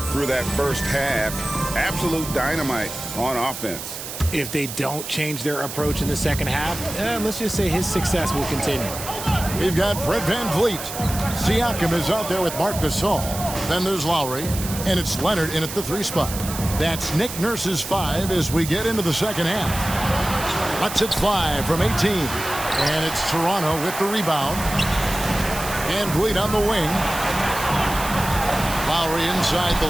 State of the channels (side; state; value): right; noise; hiss, 9 dB below the sound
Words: through that first half. Absolute dynamite on offense. If they don't change their approach in the second half, let's just say his success will continue. We've got Fred VanVleet. Siakam is out there with Marc Gasol. Then there's Lowry, and it's Leonard in at the 3 spot. That's Nick Nurse's 5 as we get into the second half. Lets it fly from 18. And it's Toronto with the rebound. VanVleet on the wing. Lowry inside the